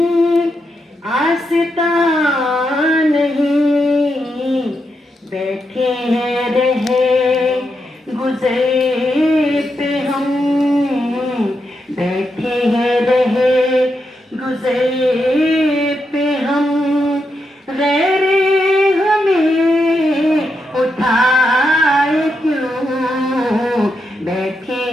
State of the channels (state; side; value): normal; both; correlation 0.84